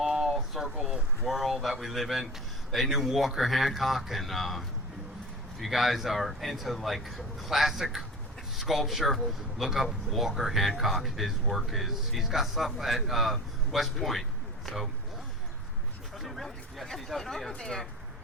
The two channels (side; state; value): both; normal; correlation 0.32